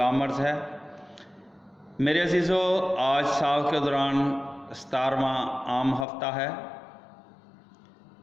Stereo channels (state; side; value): drops out; right; at 6.1 s